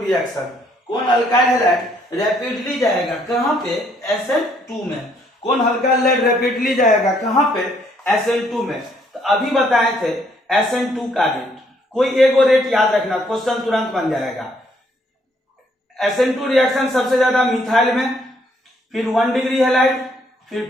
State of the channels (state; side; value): normal; both; correlation 0.68